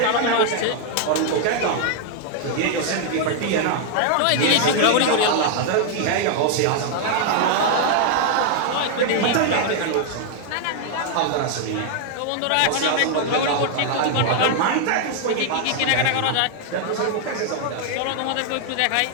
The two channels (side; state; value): both; different; correlation 0.00